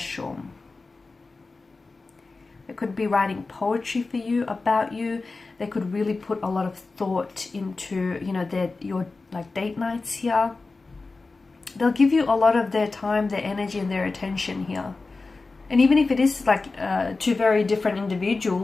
They could be writing poetry for you, about you. They could really put a lot of thought into, you know, your like date nights here. They'll give you a lot of their time, their energy, and their attention here. And even if it is like two very different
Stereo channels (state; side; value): quieter; right; 3.8 dB